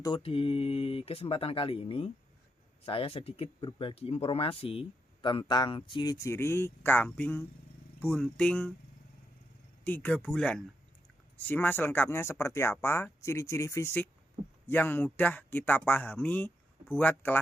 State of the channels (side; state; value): both; normal; correlation 0.82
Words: di kesempatan kali ini, saya sedikit berbagi informasi tentang ciri-ciri kambing bunting 3 bulan. Simak selengkapnya seperti apa ciri-ciri fisik yang mudah kita pahami buat